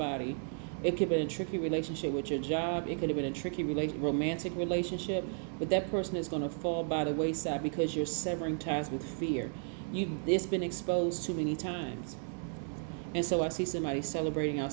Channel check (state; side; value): silent; left; 55 dB below the other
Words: It could have been a tricky relationship with your job. It could have been a tricky romantic relationship, but that person is going to fall by the wayside because you're severing ties with fear. It's been exposed too many times. And so I see somebody celebrating